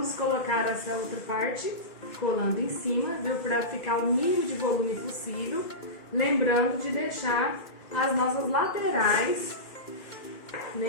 colocar essa outra parte colando em cima, viu, para ficar o mínimo de volume possível, lembrando de deixar as nossas laterais,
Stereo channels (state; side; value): late; right; 2.1 ms